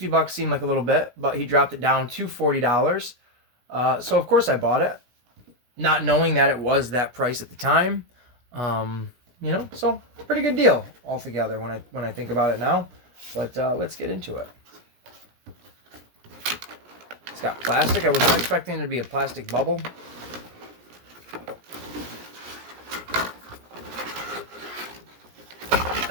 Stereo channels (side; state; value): left; late; 17 ms